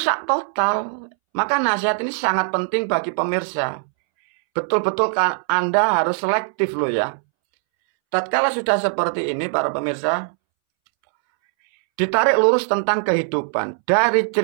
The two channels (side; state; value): left; silent; 65 dB below the other